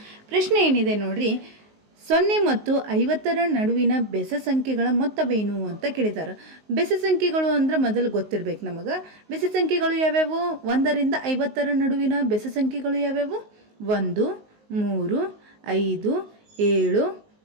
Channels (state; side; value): late; left; 19 ms